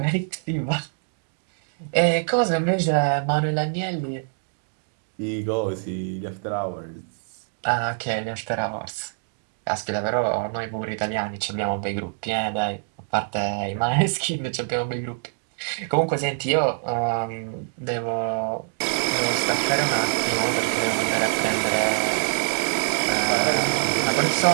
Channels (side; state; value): left; silent; digital silence